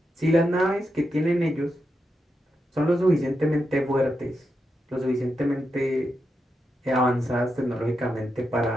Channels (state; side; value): normal; both; correlation 0.86